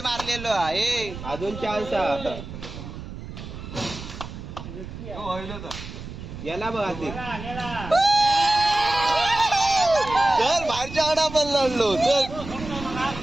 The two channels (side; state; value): right; noise; rumble, 11 dB below the sound